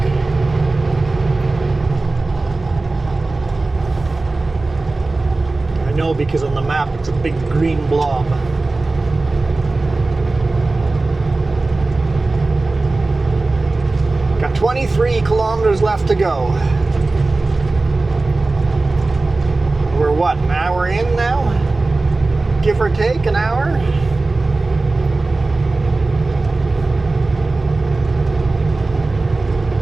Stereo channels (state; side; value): quieter; left; 3.3 dB